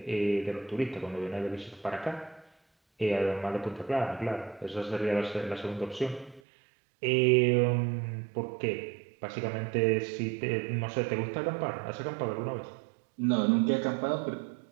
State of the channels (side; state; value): left; drops out; at 6.4 s